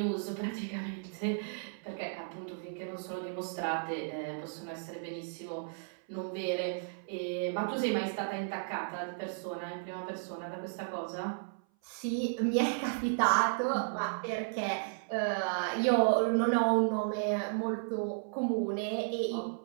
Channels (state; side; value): silent; left; 55 dB below the other